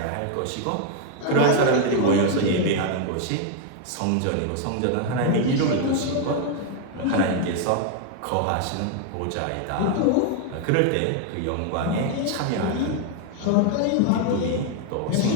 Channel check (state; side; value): different; both; correlation 0.00